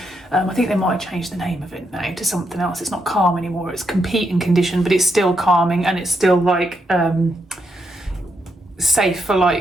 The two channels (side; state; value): both; normal; correlation 0.81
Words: I think they might have changed the name of it now to something else. It's not calm anymore, it's competing condition, but it's still calming, and it's still like safe for